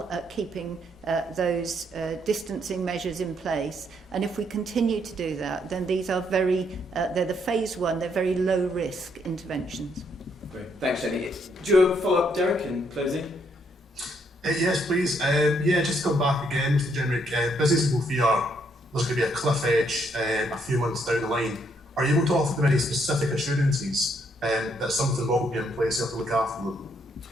at keeping those distancing measures in place. And if we continue to do that, then these are they're the phase 1, they're very low risk interventions. Great. Thanks, Jenny. Do you have a follow-up, Derek, in closing? Yes, please. Just to come back again, Mr. Jenrick, businesses will fear there's going to be a cliff edge a few months down the line. Are you able to offer them any specific assurances that something will be in place to look after them?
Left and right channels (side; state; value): both; normal; correlation 0.72